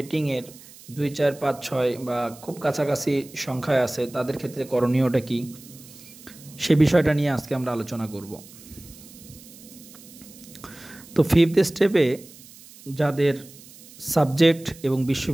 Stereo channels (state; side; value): noise; right; hiss, 20 dB below the sound